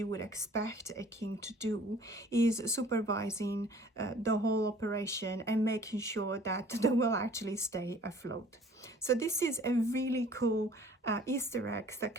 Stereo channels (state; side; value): normal; both; correlation 0.52